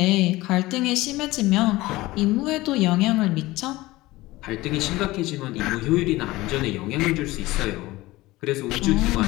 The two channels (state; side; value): quieter; right; 19.1 dB